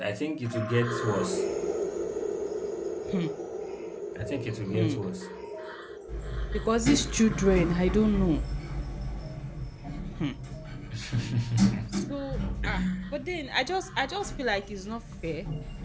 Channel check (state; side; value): identical; both; correlation 1.00